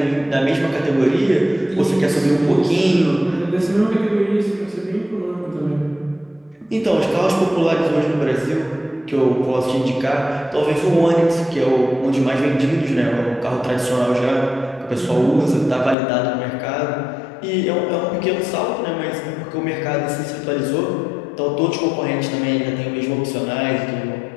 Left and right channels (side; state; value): right; drops out; at 16.0 s